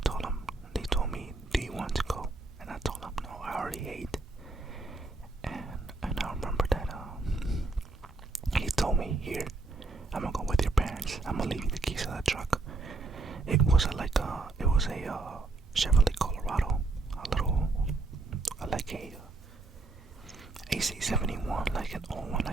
told him, they told me, do you want to go? And I told him, no, I already ate. And I remember that he told me, here, I'm gonna go with your parents. I'm gonna leave you the keys of the truck. It was a Chevrolet Colorado, like a AC71, like an old one,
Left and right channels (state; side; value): quieter; left; 3.5 dB